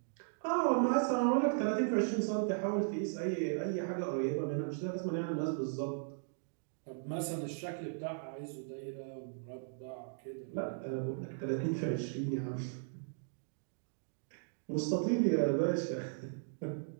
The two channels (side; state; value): left; silent; digital silence